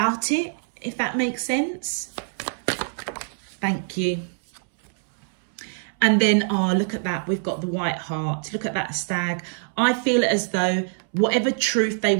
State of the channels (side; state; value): left; silent; 62 dB below the other